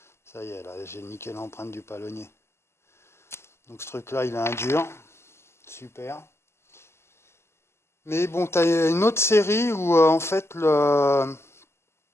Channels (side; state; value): right; late; 0.12 ms